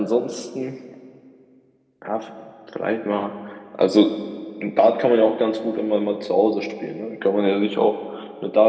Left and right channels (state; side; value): identical; both; correlation 1.00